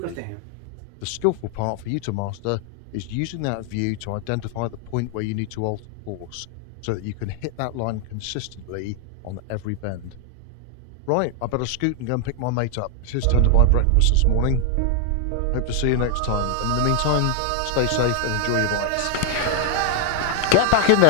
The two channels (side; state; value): both; different; correlation 0.00